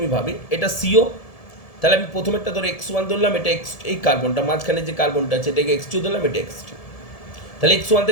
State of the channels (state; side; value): late; right; 1.7 ms